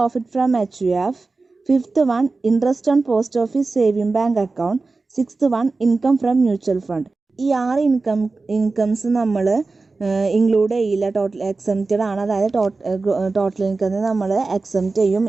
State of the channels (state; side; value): quieter; left; 3.8 dB